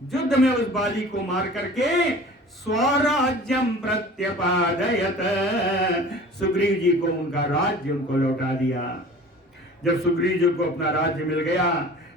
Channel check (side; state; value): both; normal; correlation 0.43